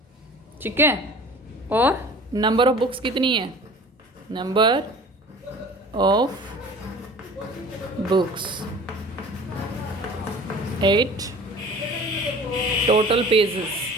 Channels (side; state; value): both; normal; correlation 0.43